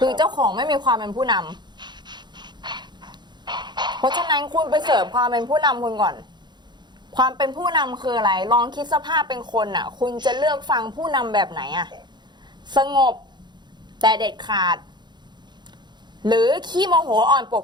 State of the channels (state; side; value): late; left; 0.21 ms